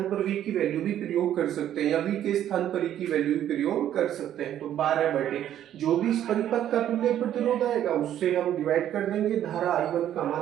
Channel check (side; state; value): left; quieter; 11.1 dB